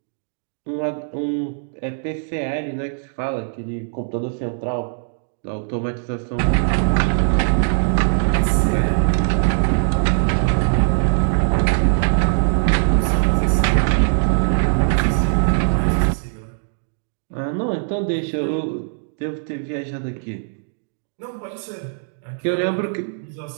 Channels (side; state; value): left; silent; digital silence